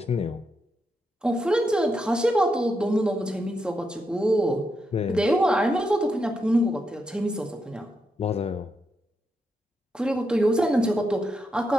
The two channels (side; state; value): both; normal; correlation 0.83